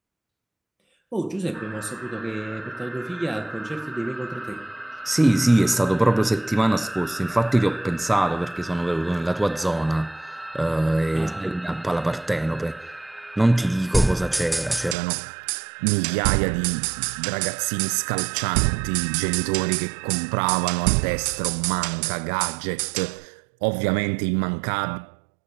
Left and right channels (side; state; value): left; drops out; at 15.0 s